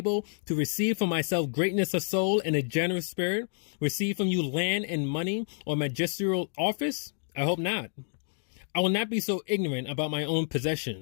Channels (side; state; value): right; silent; digital silence